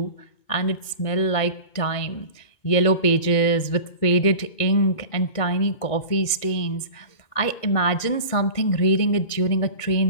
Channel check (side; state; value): right; late; 2.2 ms